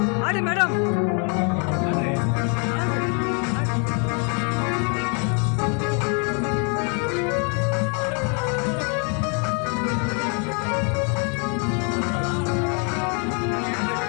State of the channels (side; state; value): right; quieter; 38.0 dB